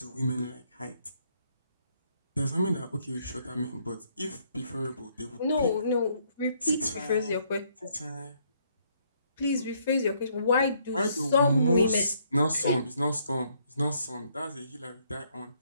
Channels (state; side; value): inverted; both; correlation -0.69